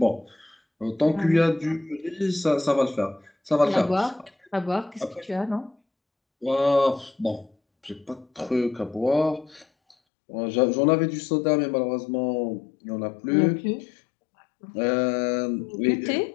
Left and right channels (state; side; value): drops out; right; at 10.0 s